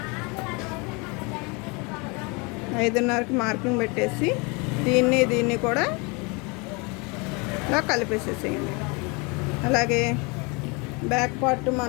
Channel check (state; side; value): quieter; right; 29.7 dB